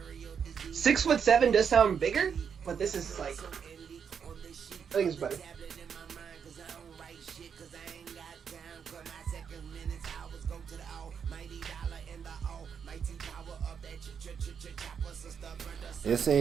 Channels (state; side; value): quieter; left; 7.1 dB